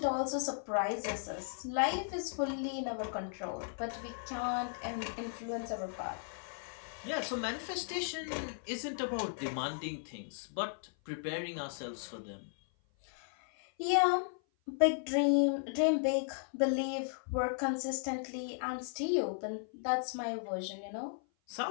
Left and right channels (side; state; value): right; silent; 54 dB below the other